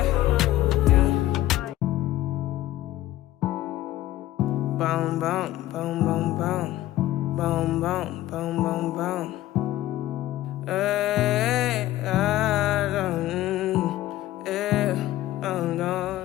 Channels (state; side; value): quieter; right; 14.9 dB